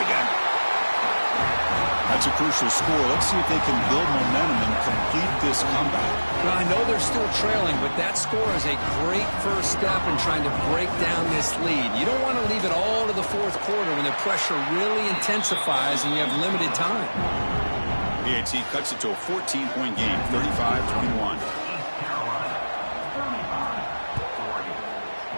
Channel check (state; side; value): inverted; both; correlation -1.00